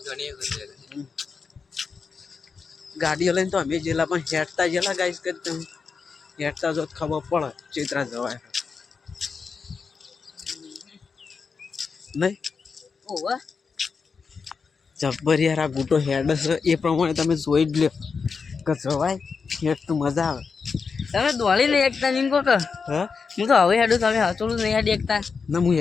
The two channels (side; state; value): right; quieter; 5.3 dB